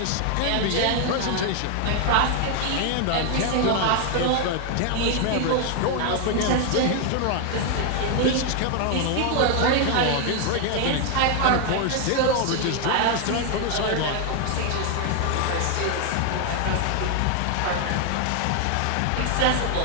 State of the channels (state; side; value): different; both; correlation 0.00